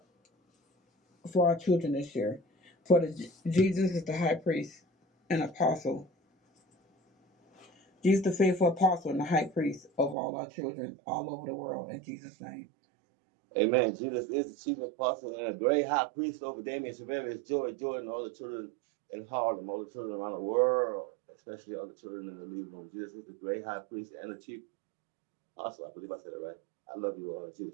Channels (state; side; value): drops out; left; at 10.2 s